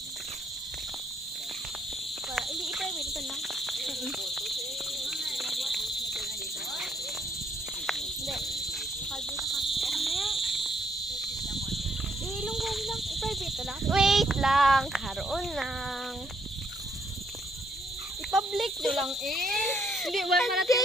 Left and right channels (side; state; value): both; normal; correlation 0.71